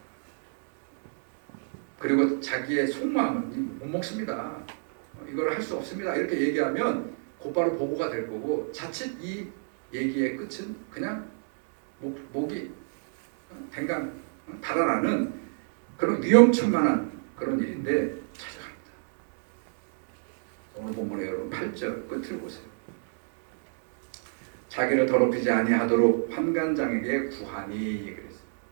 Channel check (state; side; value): silent; left; digital silence